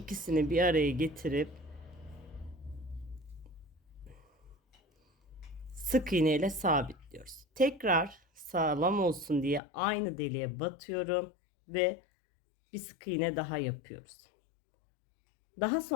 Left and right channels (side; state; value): right; drops out; at 9.6 s